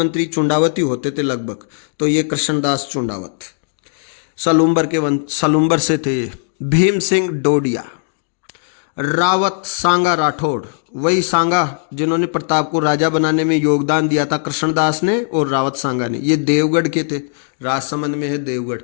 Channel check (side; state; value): right; silent; digital silence